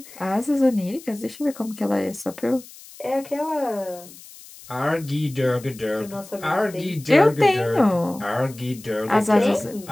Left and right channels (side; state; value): left; noise; hiss, 19 dB below the sound